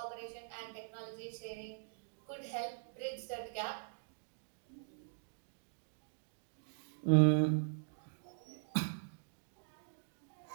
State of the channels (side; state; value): left; silent; digital silence